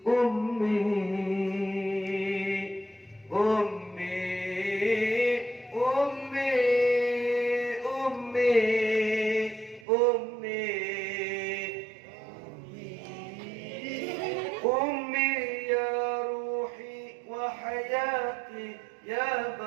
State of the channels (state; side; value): drops out; left; at 9.9 s